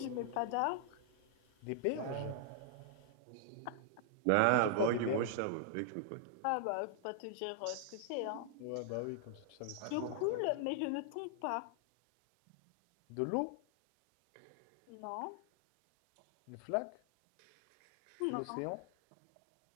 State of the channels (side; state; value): both; different; correlation -0.01